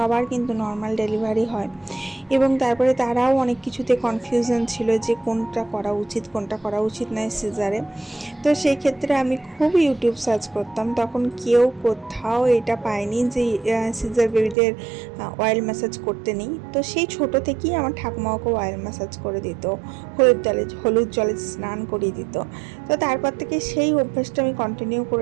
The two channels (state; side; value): drops out; left; at 14.6 s